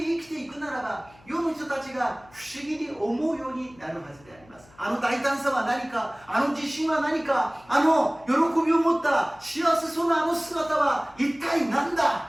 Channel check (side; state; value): left; noise; hum, 27 dB below the sound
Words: 生きていくならば、世の人たちが不思議に思うようになるはずであります。あの大胆さは何か、あの自信は何か、あの喜びを持ったが幸せそうなあの姿は一体なん